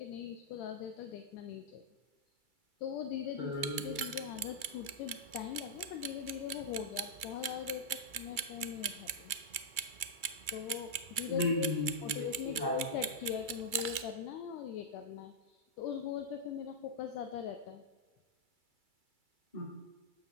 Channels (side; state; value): left; late; 2.3 ms